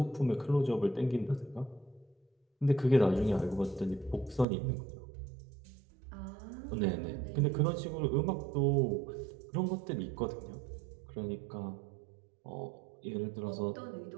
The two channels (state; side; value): drops out; left; at 4.5 s